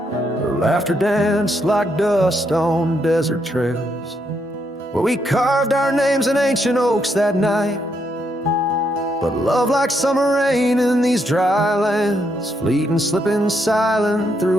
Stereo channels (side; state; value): both; normal; correlation 0.77